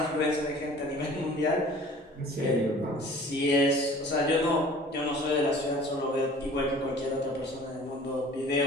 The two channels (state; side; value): normal; both; correlation 0.47